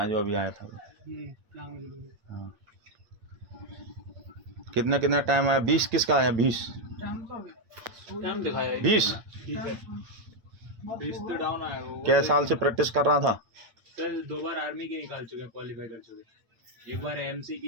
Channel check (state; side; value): late; left; 8.7 ms